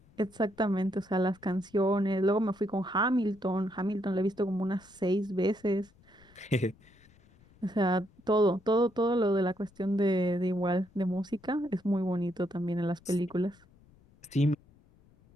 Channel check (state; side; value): noise; left; rumble, 28 dB below the sound